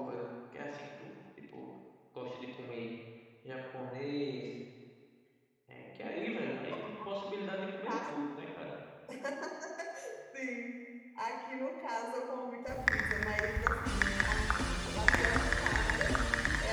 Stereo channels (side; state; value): both; identical; correlation 1.00